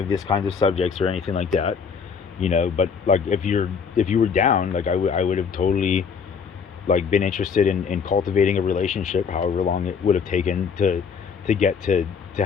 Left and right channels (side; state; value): right; quieter; 6.2 dB